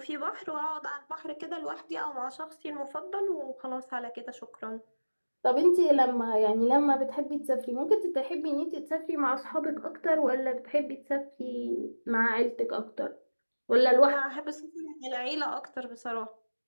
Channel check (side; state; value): both; inverted; correlation -1.00